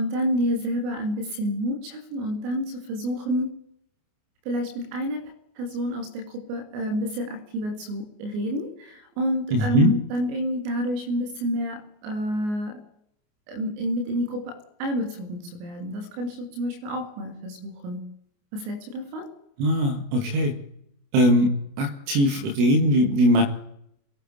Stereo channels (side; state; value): left; late; 29 ms